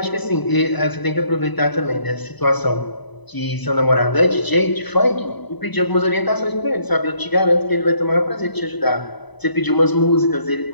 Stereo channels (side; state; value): right; late; 1.0 ms